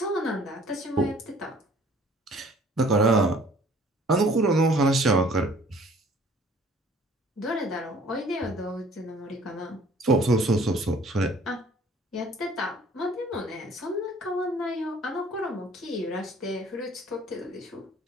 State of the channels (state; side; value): normal; both; correlation 0.55